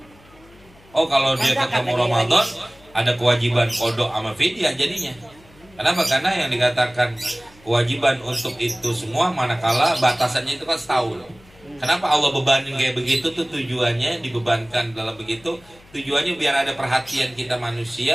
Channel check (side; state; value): left; noise; hum, 26 dB below the sound